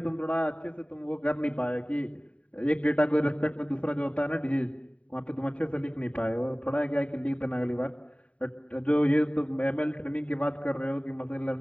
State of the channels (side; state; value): right; late; 0.064 ms